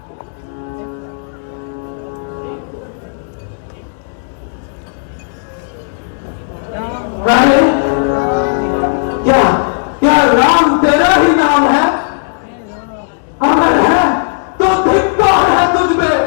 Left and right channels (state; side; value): silent; right; digital silence